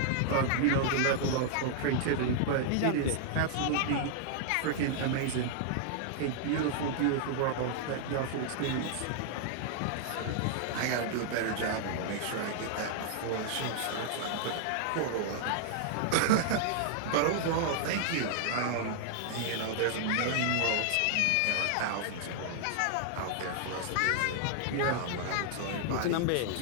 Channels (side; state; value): both; different; correlation -0.01